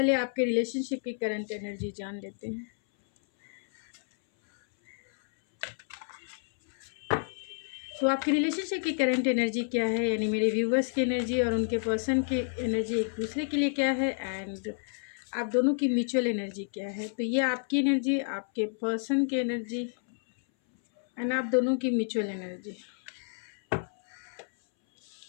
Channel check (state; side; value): silent; right; 58 dB below the other